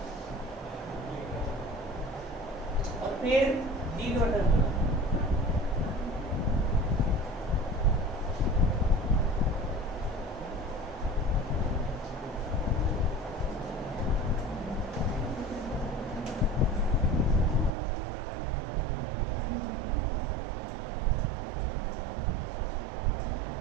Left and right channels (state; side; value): drops out; left; at 17.7 s